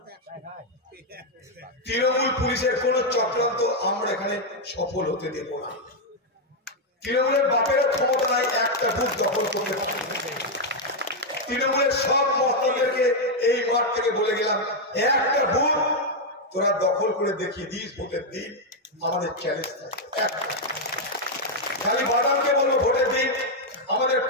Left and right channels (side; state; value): both; normal; correlation 0.00